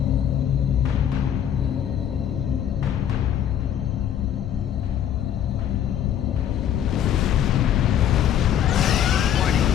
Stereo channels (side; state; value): right; quieter; 9.8 dB